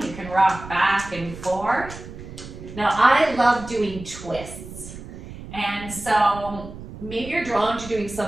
You can rock back and forth. Now, I love doing twists. And so maybe you're drawn to doing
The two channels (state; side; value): noise; right; rumble, 13 dB below the sound